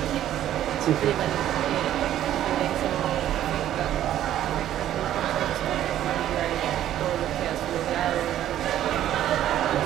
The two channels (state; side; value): quieter; left; 12.0 dB